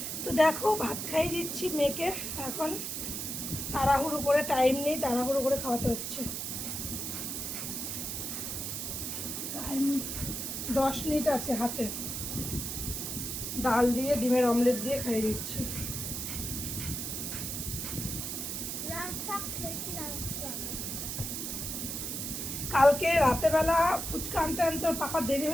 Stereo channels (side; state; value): right; noise; hiss, 4 dB below the sound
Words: তো দেখো ভাত খাইয়ে দিচ্ছি মেয়েকে। এখন তাড়াহুড়ো করে, টাইম নেই, তাড়াহুড়ো করে খাওয়াতে হচ্ছে। টাইম 10 মিনিট আছে হাতে। ডাল দিয়ে ডিমের অমলেট দিয়ে খাইয়ে দিচ্ছি। কালকে রাতেবেলা ফুচকা আনতে আনতে ওর পাপা দেরি